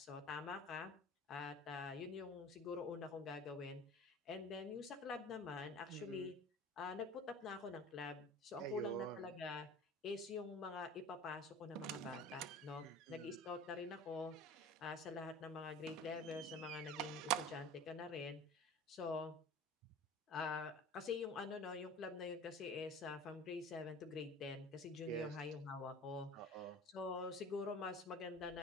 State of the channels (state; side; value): normal; both; correlation 0.40